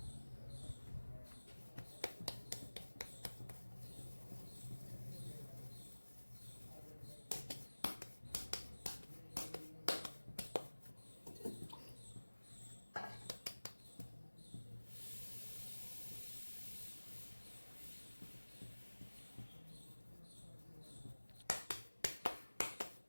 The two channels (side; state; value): both; inverted; correlation -1.00